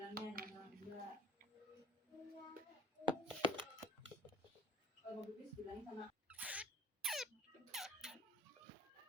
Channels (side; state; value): both; normal; correlation 0.48